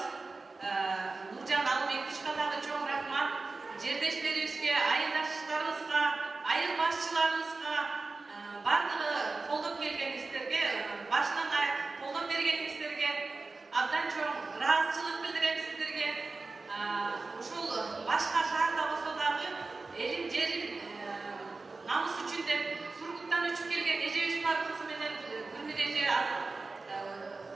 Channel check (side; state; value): left; quieter; 3.7 dB